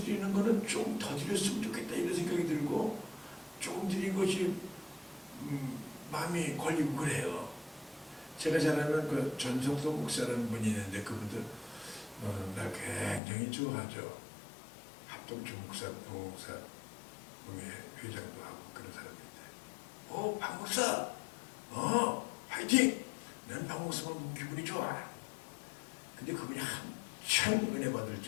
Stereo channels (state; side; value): drops out; right; at 13.2 s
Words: 거는 좀 더 드렸으면 좋겠다 이런 생각이 들고 조금 드린 것이 마음이 걸리고 그래요. 제가 잘 아는 그 전성도 목사라는 분이 있는데 그분들 날 굉장히 좋아하죠. 합동주 목사, 부목사, 회장도 하고 그런 사람인데 박 목사! 화이팅! 난 박 목사만 보면 기분이 좋아. 근데 그분이 한참 은혜 받을